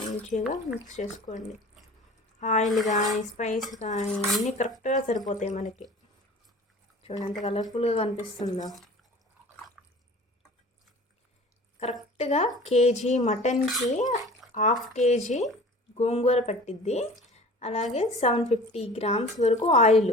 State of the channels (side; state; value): both; normal; correlation 0.43